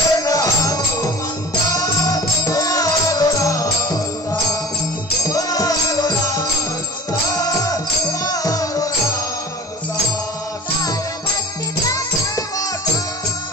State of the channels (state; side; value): normal; both; correlation 0.38